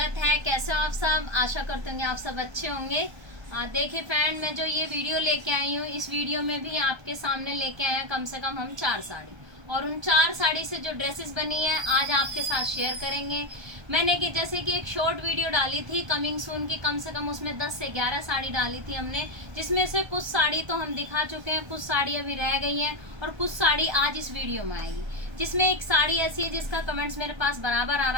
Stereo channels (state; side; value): late; left; 1.3 ms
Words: है। कैसे हो आप सब? आशा करते होंगे आप सब अच्छे होंगे। देखिए फ्रेंड, मैं जो ये वीडियो लेके आई हूँ, इस वीडियो में भी आपके सामने लेके आए हैं कम से कम हम 4 साड़ी, और उन 4 साड़ी से जो ड्रेसेस बनी है आज आपके साथ शेयर करेंगे। मैंने कि जैसे कि एक शॉर्ट वीडियो डाली थी कमिंग सून की, कम से कम उसमें 10 से 11 साड़ी डाली थी हमने, जिसमें से कुछ साड़ी तो हम दिखा चुके हैं, कुछ साड़ी अभी रह गई हैं और कुछ साड़ी आज इस वीडियो में आएगी। जिसमें एक साड़ी ऐसी है जिसका कमेंट्स मेरे पास बराबर आ